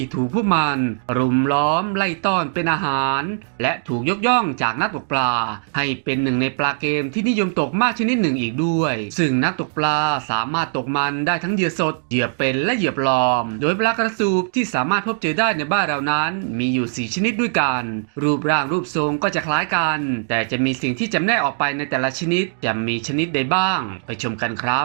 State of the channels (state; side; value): silent; left; digital silence